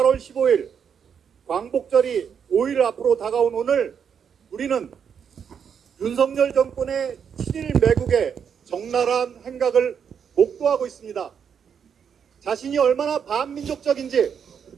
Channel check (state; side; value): quieter; left; 7.4 dB